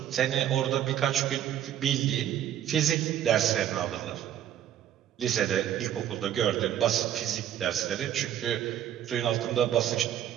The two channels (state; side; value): quieter; left; 10.9 dB